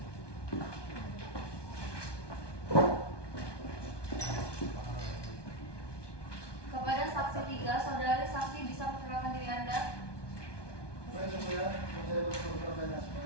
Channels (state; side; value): late; right; 1.2 ms